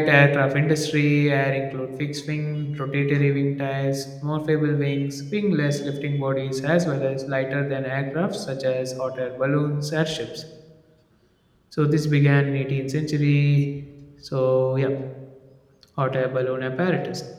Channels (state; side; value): identical; both; correlation 1.00